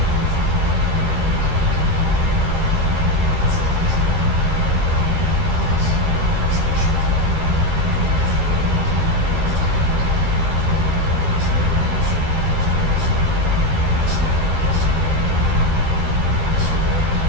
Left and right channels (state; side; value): late; left; 12 ms